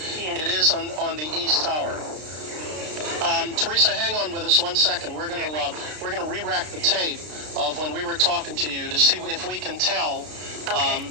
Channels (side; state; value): left; late; 33 ms